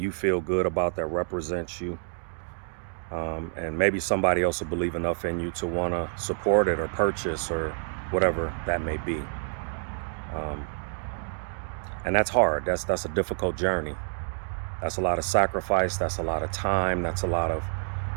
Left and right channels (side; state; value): left; silent; digital silence